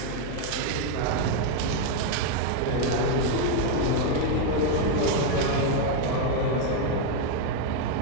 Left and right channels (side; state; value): both; different; correlation 0.01